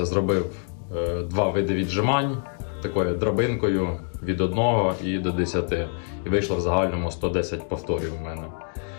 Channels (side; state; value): right; silent; 62 dB below the other